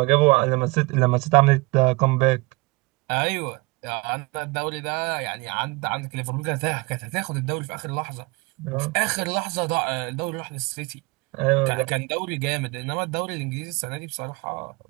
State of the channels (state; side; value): quieter; left; 25.4 dB